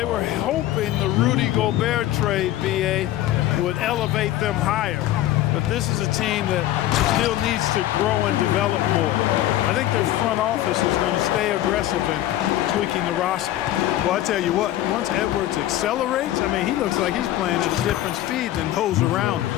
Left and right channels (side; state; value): right; quieter; 14.0 dB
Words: were hoping the Rudy Gobert trade, BA, would elevate them higher. But this is a team that still needs to grow and develop more. I think their front office is going to stay aggressive in tweaking the roster. Well, I tell you what, once Edwards accelerates, I mean, he looks like he's playing at a different speed than those around